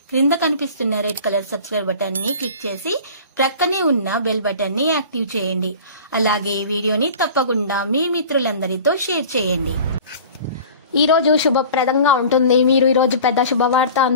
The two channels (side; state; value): both; inverted; correlation -0.41